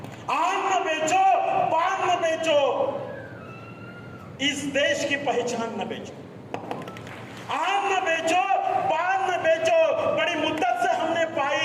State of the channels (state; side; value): identical; both; correlation 1.00